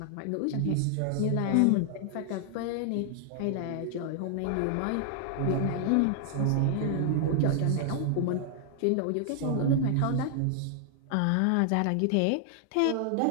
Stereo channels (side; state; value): both; different; correlation 0.00